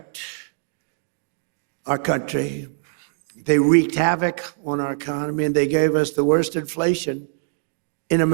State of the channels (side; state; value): left; silent; digital silence